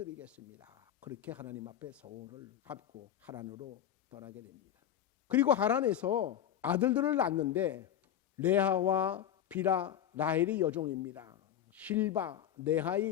그렇게 하나님 앞에 서울을 갚고 하란으로 떠나게 됩니다. 그리고 하란에서 아들들을 낳는데 레아와 빌하, 라헬이 여종입니다. 실바,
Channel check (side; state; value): right; quieter; 10.4 dB